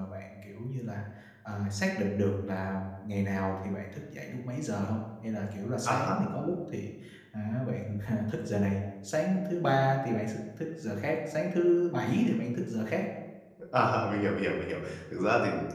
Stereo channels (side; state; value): both; identical; correlation 1.00